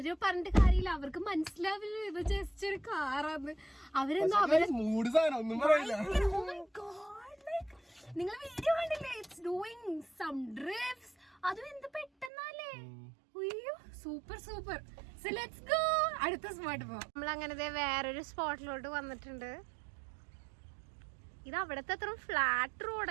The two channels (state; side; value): drops out; left; at 12.3 s